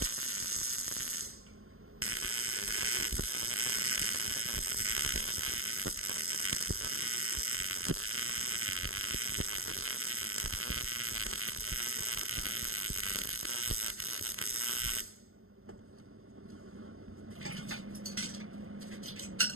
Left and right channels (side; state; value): left; late; 0.62 ms